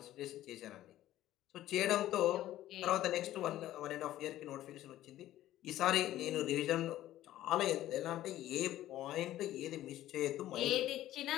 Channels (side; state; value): right; quieter; 13.9 dB